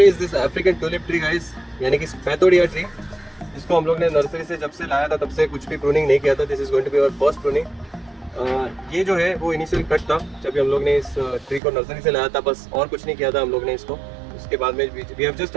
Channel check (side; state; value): left; drops out; at 11.6 s